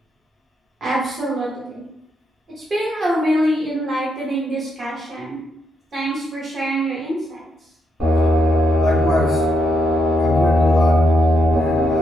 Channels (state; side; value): normal; both; correlation 0.79